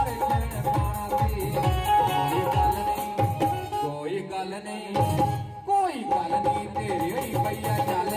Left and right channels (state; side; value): identical; both; correlation 1.00